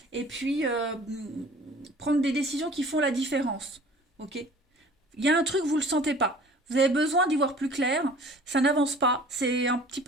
et puis prendre des décisions qui font la différence. Ok Il y a un truc, vous ne le sentez pas. Vous avez besoin d'y voir plus clair. Ça n'avance pas. C'est un petit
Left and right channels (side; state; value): both; normal; correlation 0.47